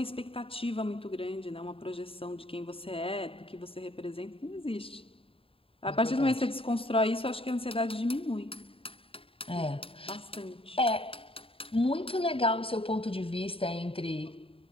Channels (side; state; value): right; late; 0.27 ms